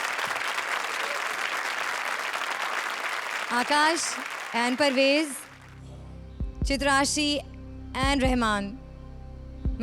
आकाश एंड परवेज, चित्राशी एंड रहमान,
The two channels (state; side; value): identical; both; correlation 1.00